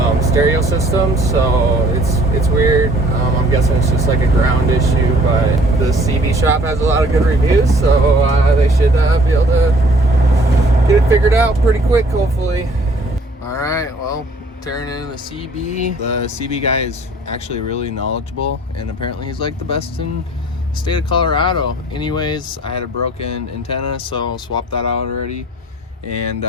stereo system, so it's weird. I'm guessing it's just like a ground issue, but the CB shop has a lot of good reviews, so they should be able to get it figured out pretty quick, hopefully. All right, well, tearing in the CB. The CB guy is actually really knowledgeable, and apparently he's like the best in the state of Colorado. Anyways, I had a broken antenna, so I'll swap that out already. And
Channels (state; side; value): normal; both; correlation 0.56